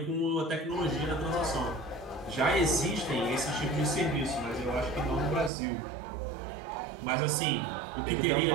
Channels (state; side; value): drops out; left; at 5.5 s